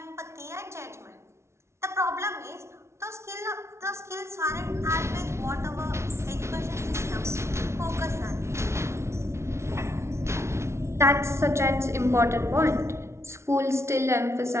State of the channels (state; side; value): late; left; 0.13 ms